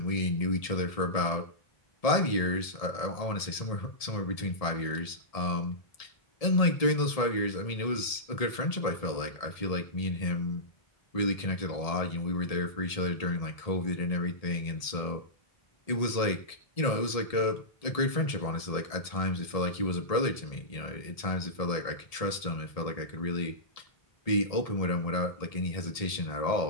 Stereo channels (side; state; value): right; late; 1.7 ms